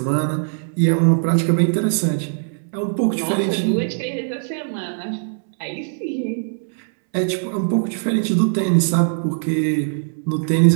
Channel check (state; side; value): silent; left; 65 dB below the other